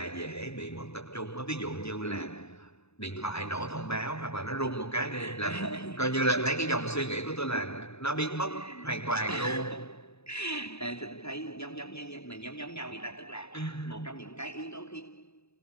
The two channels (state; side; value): late; right; 0.79 ms